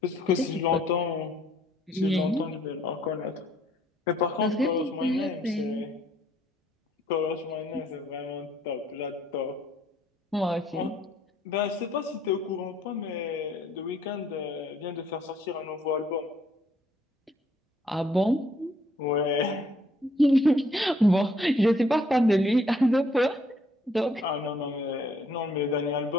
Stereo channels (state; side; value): normal; both; correlation 0.65